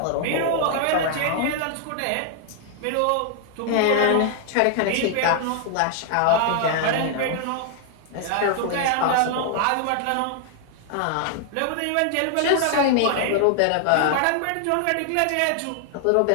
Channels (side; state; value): both; different; correlation 0.00